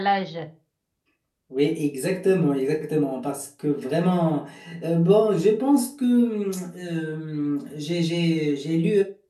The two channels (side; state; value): both; identical; correlation 1.00